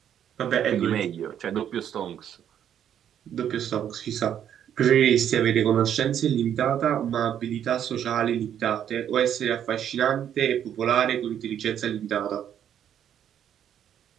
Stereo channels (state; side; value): quieter; left; 9.7 dB